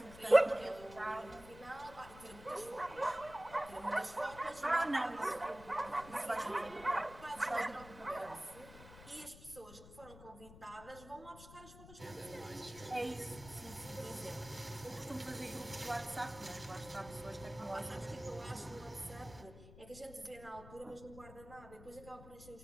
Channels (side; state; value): left; noise; rumble, 16 dB below the sound